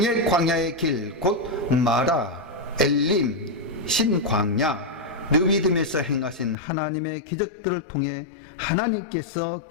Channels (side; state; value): right; drops out; at 6.6 s